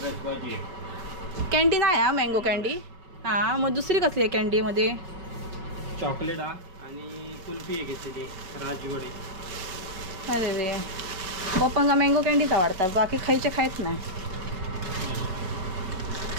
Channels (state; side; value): late; left; 5.3 ms